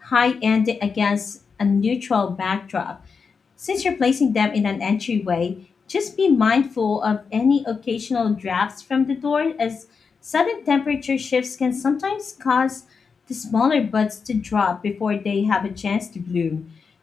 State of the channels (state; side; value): quieter; right; 5.4 dB